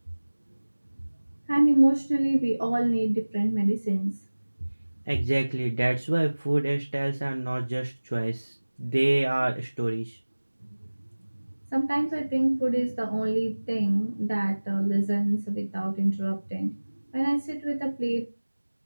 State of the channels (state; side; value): inverted; both; correlation -1.00